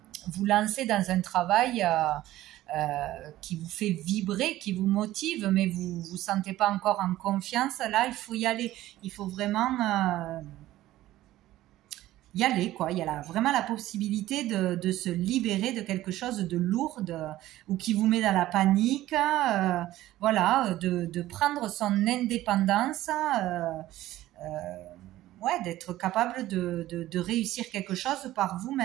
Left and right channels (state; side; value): quieter; left; 15.2 dB